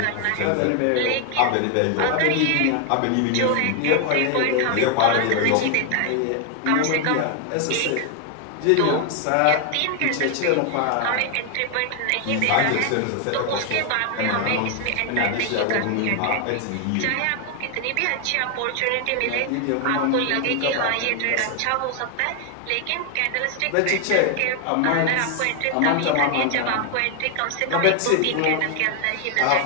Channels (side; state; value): both; different; correlation 0.00